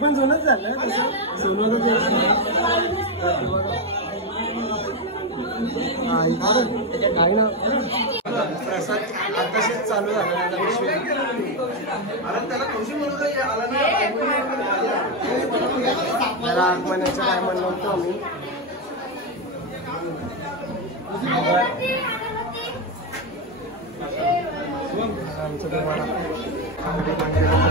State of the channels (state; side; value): normal; both; correlation 0.06